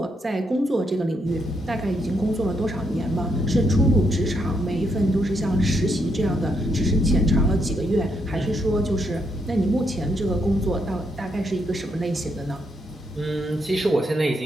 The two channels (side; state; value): both; normal; correlation 0.77